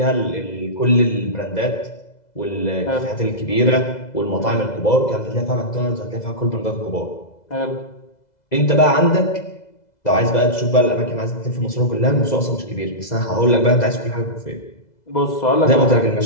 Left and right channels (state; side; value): late; right; 2.0 ms